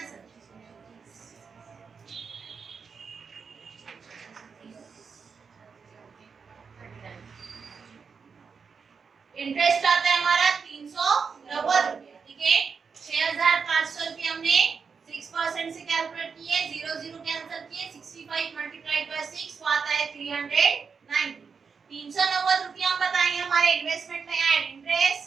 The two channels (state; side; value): quieter; left; 5.7 dB